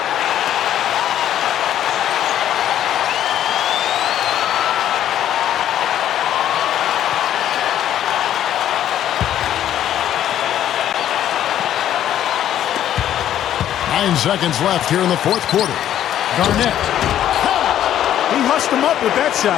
Seconds left here in the fourth quarter. Garnett. He hushed him up with that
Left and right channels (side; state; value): right; quieter; 11.2 dB